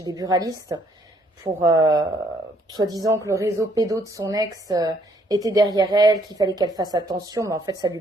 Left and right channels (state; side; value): normal; both; correlation 0.67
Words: des buralistes pour soi-disant que le réseau pédo de son ex était derrière elle, qu'il fallait qu'elle fasse attention, mais en fait, ça lui